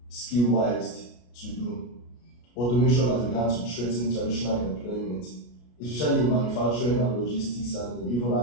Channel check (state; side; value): late; right; 33 ms